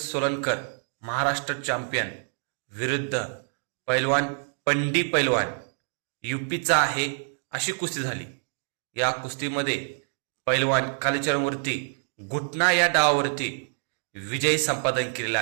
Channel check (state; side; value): silent; left; digital silence